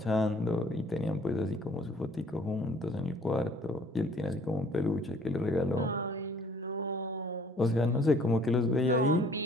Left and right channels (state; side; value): normal; both; correlation 0.56